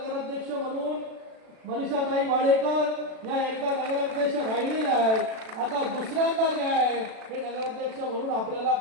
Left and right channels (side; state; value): left; late; 36 ms